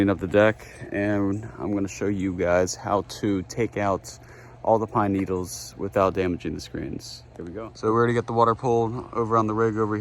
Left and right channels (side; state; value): both; identical; correlation 1.00